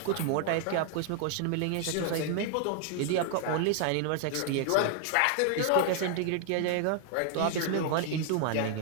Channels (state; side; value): different; both; correlation 0.00